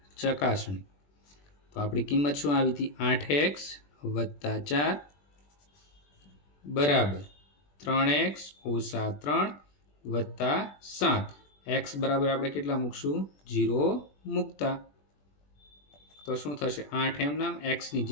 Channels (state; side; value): late; right; 21 ms